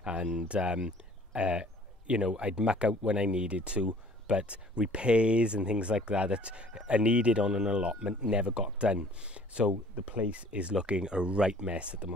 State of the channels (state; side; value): normal; both; correlation 0.53